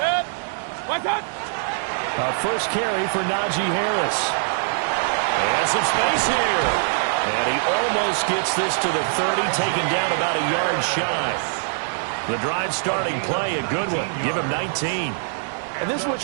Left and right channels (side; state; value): left; silent; digital silence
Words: First carry for Najee Harris. And some space here. And he almost gets this to the 30, taken down about a yard shy. The drive starting play, a good one. Give him 19. And this is what